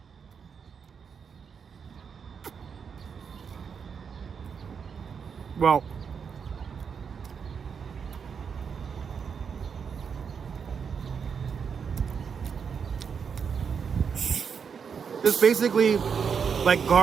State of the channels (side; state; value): left; quieter; 6.5 dB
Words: Well, it's basically like